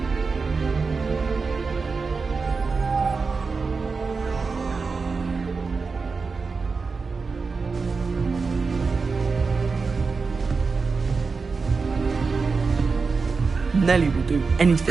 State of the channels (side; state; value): left; quieter; 4.6 dB